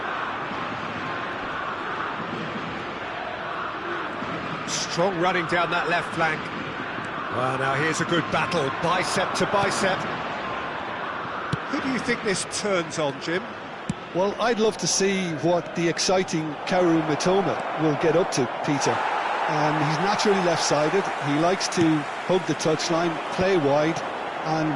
Strong running down that left flank. Well, now here's a good battle, bicep to bicep. Who do you think this turns on, Jim? Well, I'd love to see what the exciting Kaoru Mitoma will get up to, Peter. He's naturally left-sided. He likes to hug the touchline, play wide,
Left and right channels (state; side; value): identical; both; correlation 1.00